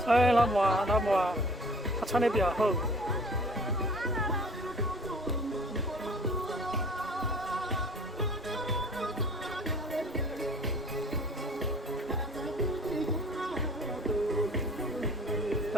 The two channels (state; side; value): normal; both; correlation 0.50